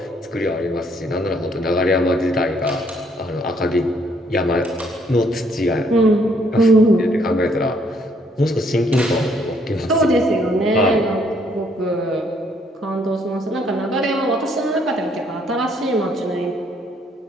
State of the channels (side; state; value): both; normal; correlation 0.67